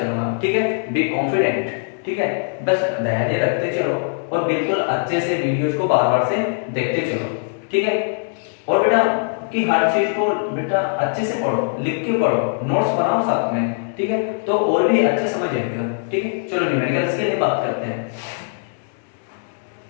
ठीक है, बी कॉन्फिडेंट। ठीक है, बस धैर्य रखते चलो और बिल्कुल अच्छे से वीडियोस को बार बार से देखते चलो। ठीक है, और बेटा कि हर चीज को बेटा अच्छे से पढ़ो, लिख के पढ़ो, नोट्स बनाओ साथ में। ठीक है, तो और भी अच्छा समझ आएगा। ठीक है, चलो न्यूमेरिकल्स के लिए बात करते हैं।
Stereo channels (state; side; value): silent; right; digital silence